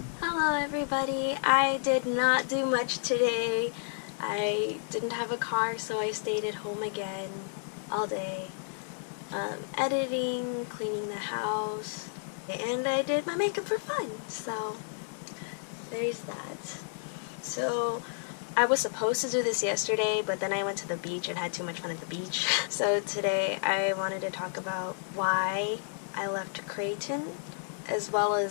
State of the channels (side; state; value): right; silent; digital silence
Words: Hello everybody, I did not do much today. I didn't have a car, so I stayed at home again all day, editing, cleaning the house, and I did my makeup for fun, so there's that. So I was supposed to do this yesterday, but then I went to the beach and had too much fun at the beach. So today I wanted to talk about why I left Creighton, as well